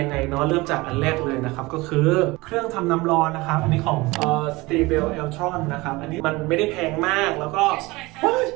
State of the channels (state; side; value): quieter; left; 22.2 dB